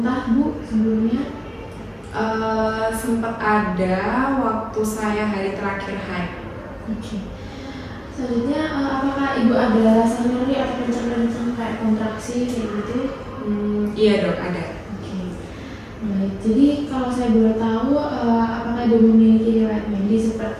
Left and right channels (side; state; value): both; identical; correlation 1.00